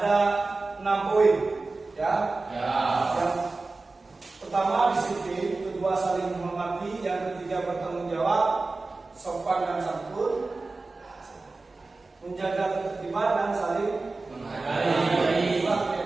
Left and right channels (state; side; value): quieter; left; 3.5 dB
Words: 6 poin, ya. Yang pertama disiplin, kedua saling menghormati, yang ketiga bertanggung jawab, sopan dan santun, menjaga ketertiban dan saling menghargai. Itulah